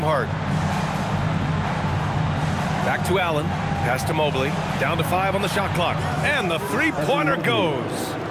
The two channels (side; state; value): both; identical; correlation 1.00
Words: Back to Allen. Pass to Mobley. Down to 5 on the shot clock. And the three-pointer goes.